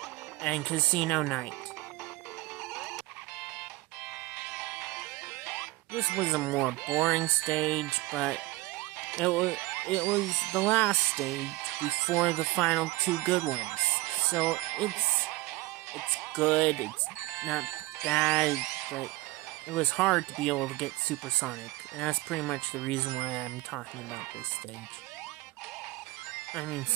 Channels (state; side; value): quieter; left; 20.3 dB